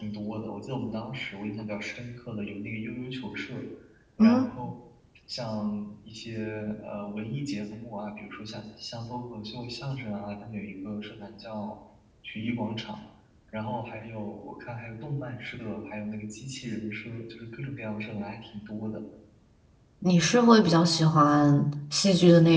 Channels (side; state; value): both; identical; correlation 1.00